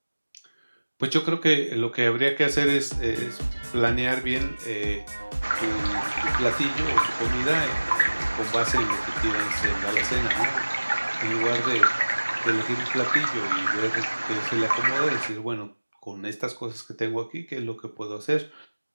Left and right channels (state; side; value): inverted; both; correlation -1.00